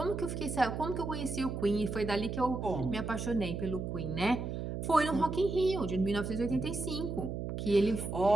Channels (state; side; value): noise; right; hum, 4 dB below the sound